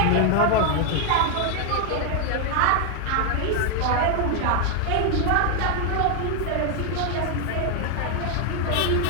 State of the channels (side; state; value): both; different; correlation 0.00